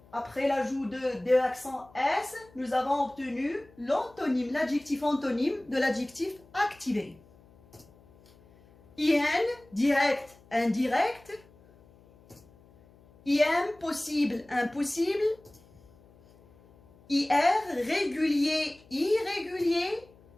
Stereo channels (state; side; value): noise; left; hum, 27 dB below the sound